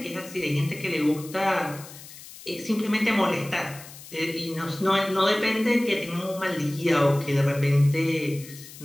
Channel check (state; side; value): noise; left; hiss, 17 dB below the sound